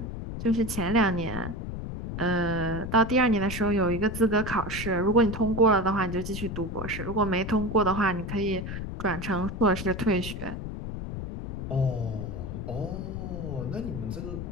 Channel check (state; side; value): noise; left; rumble, 6 dB below the sound